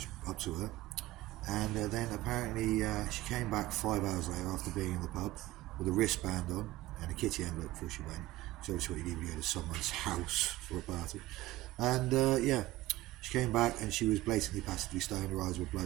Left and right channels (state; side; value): quieter; left; 17.2 dB